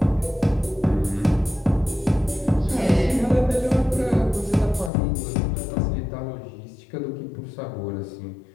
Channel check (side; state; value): right; drops out; at 4.9 s